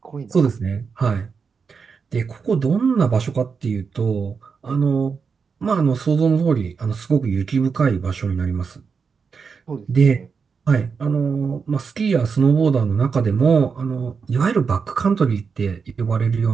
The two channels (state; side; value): quieter; left; 5.6 dB